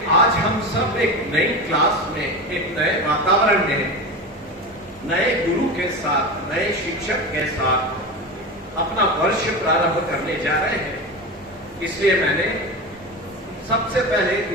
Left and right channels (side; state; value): both; normal; correlation 0.25